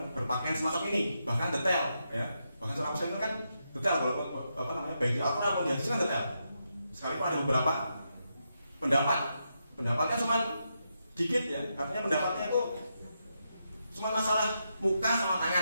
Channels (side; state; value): both; inverted; correlation -0.84